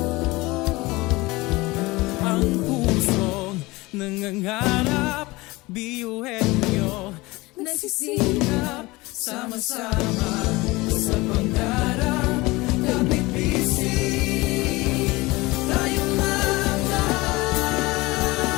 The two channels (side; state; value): right; quieter; 21.7 dB